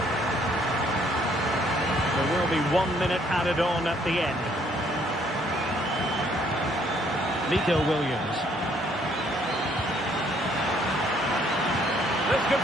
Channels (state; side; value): normal; both; correlation 0.65